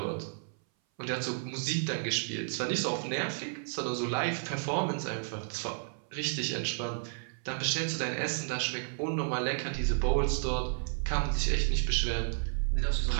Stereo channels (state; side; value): silent; left; 56 dB below the other